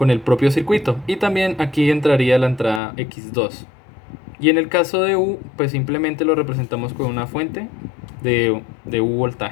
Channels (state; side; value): drops out; right; at 2.8 s